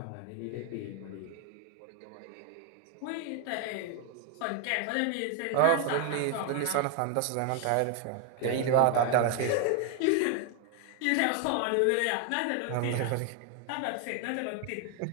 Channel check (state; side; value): different; both; correlation 0.00